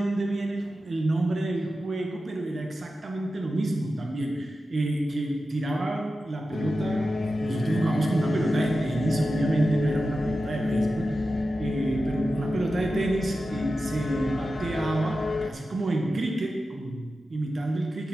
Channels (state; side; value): normal; both; correlation 0.92